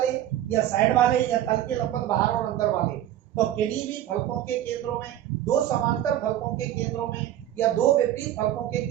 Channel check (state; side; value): quieter; left; 12.2 dB